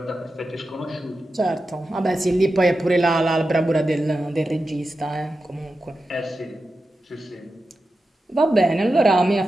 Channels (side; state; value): both; normal; correlation 0.91